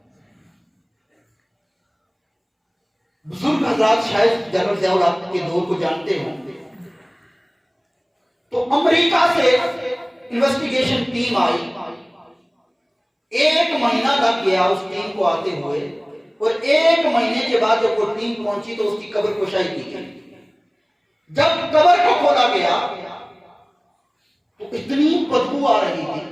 بزرگ حضرات شاید جنرل ضیاء الحق کے دور کو جانتے ہوں. تو امریکہ سے انویسٹیگیشن ٹیم آئی. 1 مہینہ لگ گیا اس ٹیم کو آتے ہوئے, اور 1 مہینے کے بعد جب وہ ٹیم پہنچی تو اس کی قبر کشائی کی گئی. جب قبر کو کھولا گیا تو اتنی بدبو آ رہی تھی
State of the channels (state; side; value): identical; both; correlation 1.00